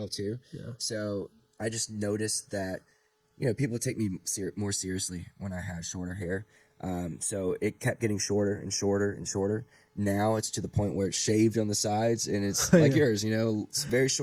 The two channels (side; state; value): both; identical; correlation 1.00